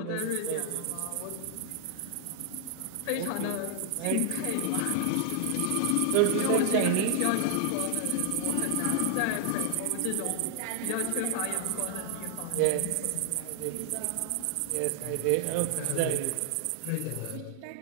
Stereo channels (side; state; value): both; different; correlation 0.00